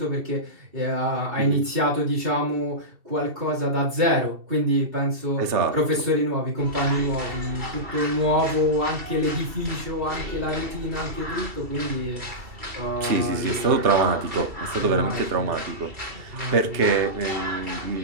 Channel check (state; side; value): late; left; 2.7 ms